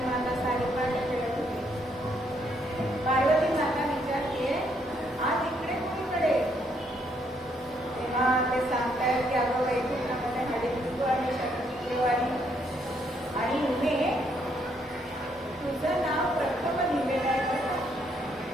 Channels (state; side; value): normal; both; correlation 0.72